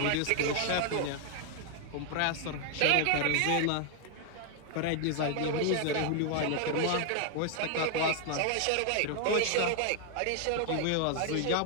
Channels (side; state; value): both; different; correlation 0.00